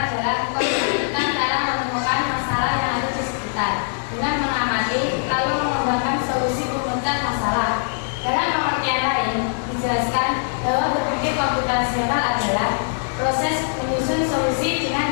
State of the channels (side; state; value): right; silent; digital silence